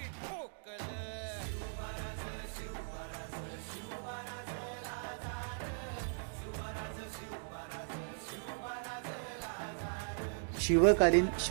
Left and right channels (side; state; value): left; silent; digital silence